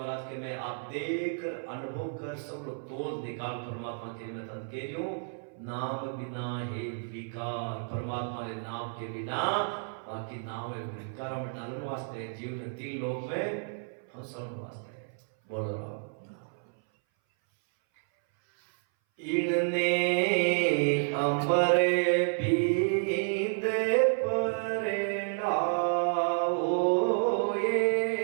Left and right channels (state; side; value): silent; left; 57 dB below the other